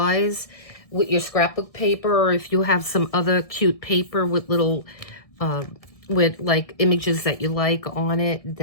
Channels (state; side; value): late; right; 1.7 ms